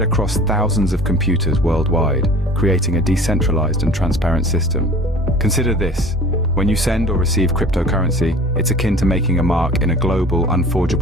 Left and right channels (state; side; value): normal; both; correlation 0.44